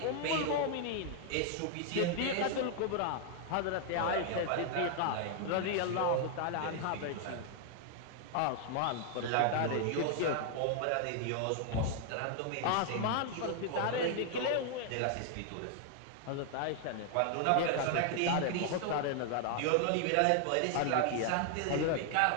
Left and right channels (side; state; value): both; different; correlation 0.00